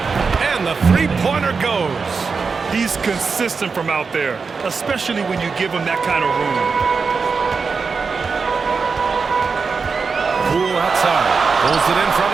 And the three-pointer goes. He's consistent from out there, especially when you give him that kind of room. Poole outside. Pulls it in from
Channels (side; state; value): left; quieter; 5.0 dB